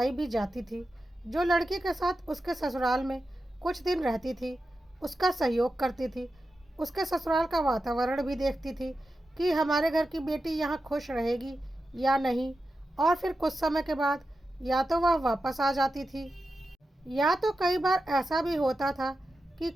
भी जाती थी, जो लड़की के साथ उसके ससुराल में कुछ दिन रहती थी, उसका सहयोग करती थी, उसके ससुराल का वातावरण भी देखती थी कि हमारे घर की बेटी यहाँ खुश रहेगी या नहीं, और फिर कुछ समय के बाद या तो वह वापस आ जाती थी या तो कई बार ऐसा भी होता था कि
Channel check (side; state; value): both; normal; correlation 0.91